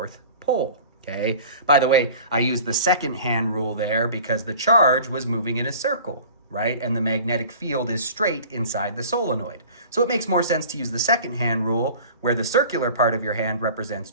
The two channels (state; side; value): inverted; both; correlation -0.42